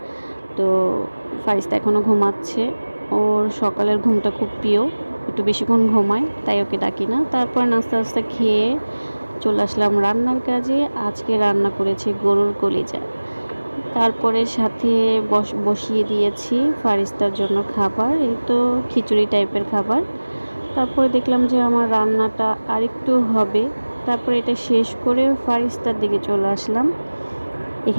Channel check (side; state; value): both; inverted; correlation -1.00